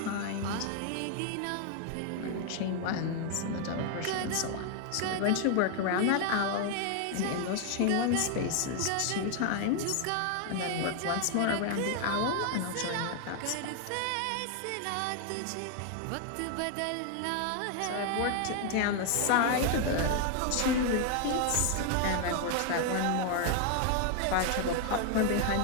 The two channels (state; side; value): different; both; correlation 0.00